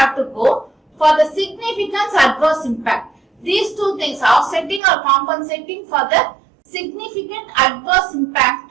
to go for the significance adverse impact. These two things, offsetting or compensating for the significant adverse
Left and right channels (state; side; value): drops out; left; at 4.8 s